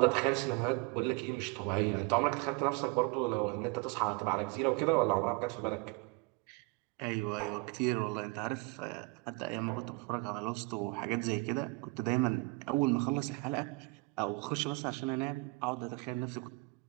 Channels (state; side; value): quieter; left; 26.8 dB